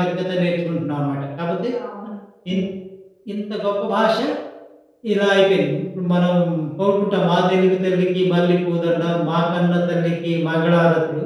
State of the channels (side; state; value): both; identical; correlation 1.00